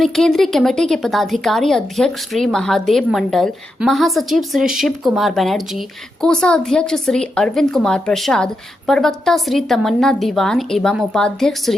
केंद्रीय कमेटी के पदाधिकारी अध्यक्ष श्री महादेव मंडल, महासचिव श्री शिव कुमार बनर्जी, कोषा अध्यक्ष श्री अरविंद कुमार प्रसाद, प्रवक्ता श्री तमन्ना दीवान एवं उपाध्यक्ष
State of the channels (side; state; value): both; normal; correlation 0.85